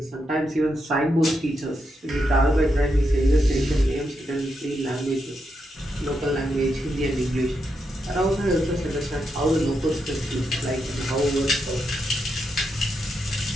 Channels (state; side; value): normal; both; correlation 0.83